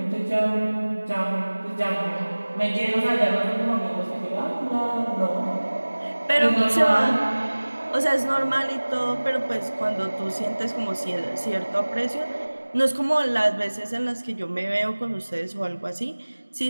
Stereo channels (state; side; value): inverted; both; correlation -1.00